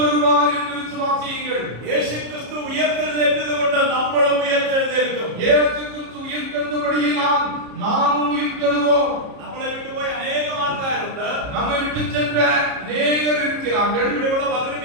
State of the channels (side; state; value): left; late; 33 ms